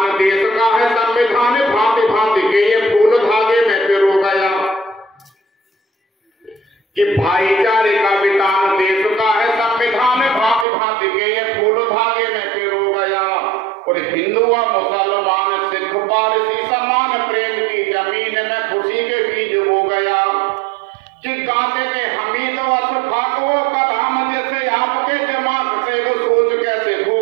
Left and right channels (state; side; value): drops out; left; at 10.7 s